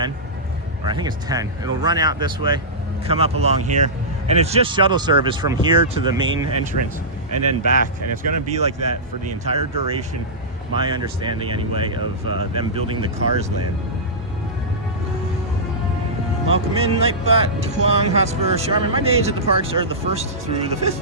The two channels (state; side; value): normal; both; correlation -0.16